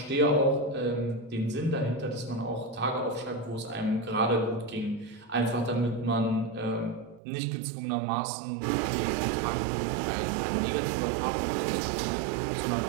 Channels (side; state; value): left; drops out; at 7.2 s